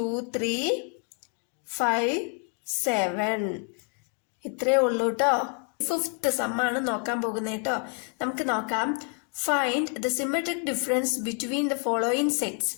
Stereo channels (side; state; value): right; quieter; 40.0 dB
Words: 3, 5, 7. ഇത്രേ ഉള്ളൂ കേട്ടോ. 5th സമ്മാണ് നോക്കാൻ പോകുന്നത് കേട്ടോ. നമുക്ക് നോക്കാം. Find the symmetric difference between the following sets.